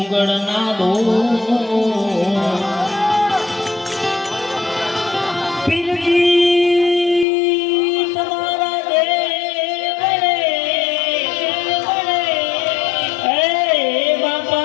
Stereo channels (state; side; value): drops out; right; at 7.2 s